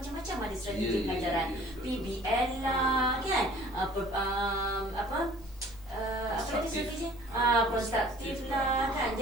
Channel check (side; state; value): both; normal; correlation 0.51